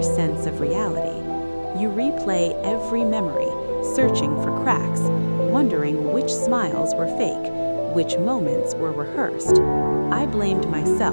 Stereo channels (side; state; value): both; inverted; correlation -1.00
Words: sense of reality. You replay every memory, searching for cracks, wondering which smiles were fake, which moments were rehearsed. I blamed